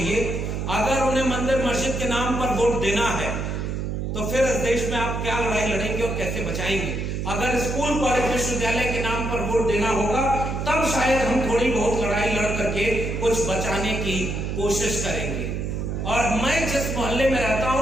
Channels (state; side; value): noise; right; hum, 3 dB below the sound